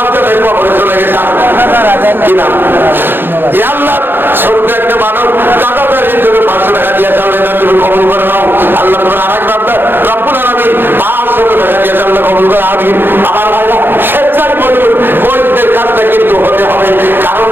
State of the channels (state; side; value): late; left; 0.10 ms